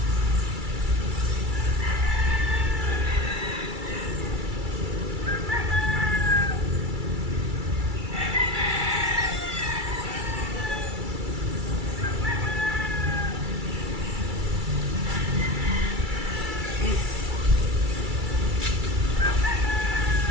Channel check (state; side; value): late; left; 2.3 ms